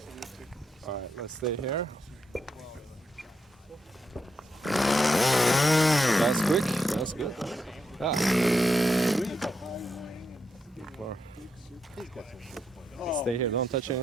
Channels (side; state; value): both; normal; correlation 0.82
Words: Alright, let's stay here. That's quick, that's good. Ah. Stay here, don't touch